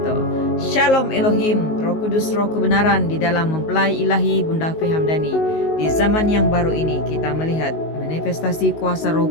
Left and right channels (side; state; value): right; late; 19 ms